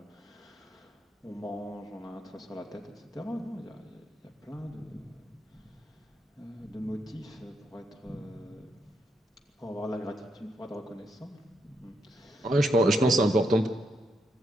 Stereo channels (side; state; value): both; normal; correlation 0.80